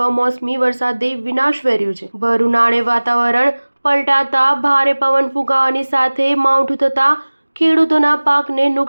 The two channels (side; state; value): both; inverted; correlation -1.00